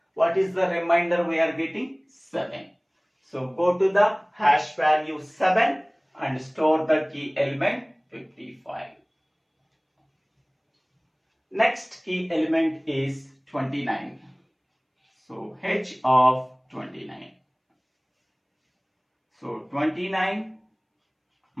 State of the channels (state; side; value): identical; both; correlation 1.00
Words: What is the remainder we are getting? 7. So go to the hash value 7 and store the key element 55. Next key element is 29. So h of 29. So 29